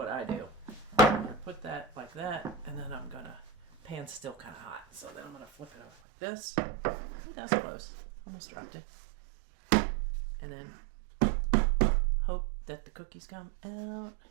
I do. I'm going to put that like that, and then I'm going to, pan's still kind of hot, so then I'm going to flip it over like this. Ooh, that was close. Almost dropped it. And then hope that the cookies come out.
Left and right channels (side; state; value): left; drops out; at 5.9 s